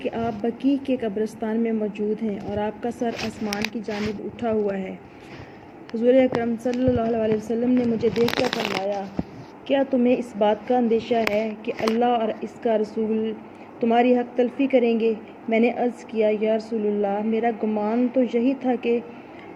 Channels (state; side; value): identical; both; correlation 1.00